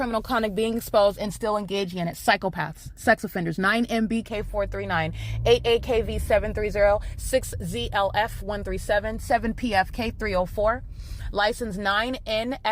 conduct being exposed and still engaging in it. Psychopaths. Sex offenders. 9MBK439. 8AKV730. 6ZLF137. 7PFK304. License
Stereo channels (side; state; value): both; identical; correlation 1.00